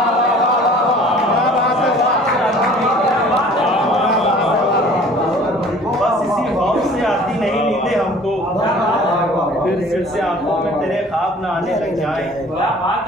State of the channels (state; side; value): normal; both; correlation 0.49